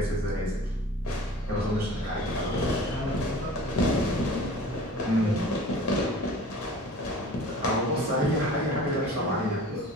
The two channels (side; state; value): both; normal; correlation 0.43